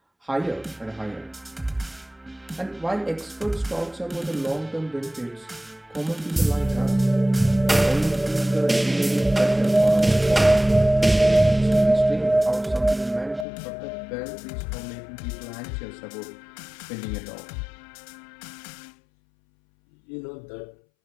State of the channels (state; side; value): drops out; right; at 13.5 s